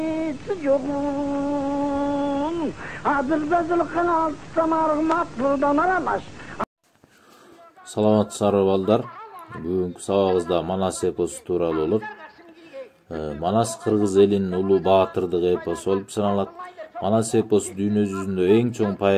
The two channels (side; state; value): both; identical; correlation 1.00